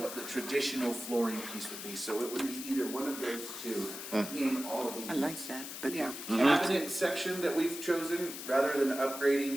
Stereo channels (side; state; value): left; noise; hiss, 9 dB below the sound